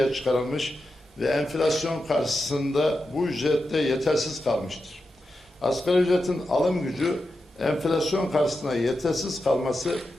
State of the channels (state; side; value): normal; both; correlation 0.89